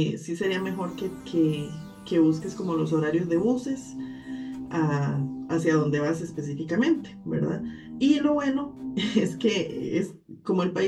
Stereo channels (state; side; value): identical; both; correlation 1.00